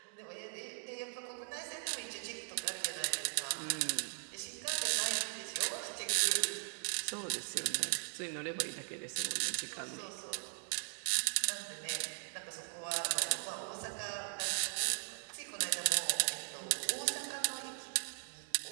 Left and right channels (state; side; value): silent; left; digital silence